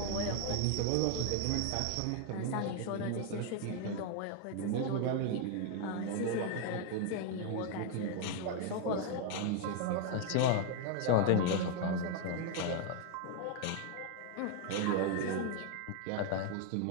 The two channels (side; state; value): both; different; correlation 0.00